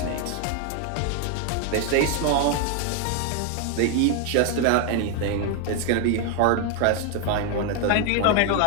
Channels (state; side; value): different; both; correlation 0.01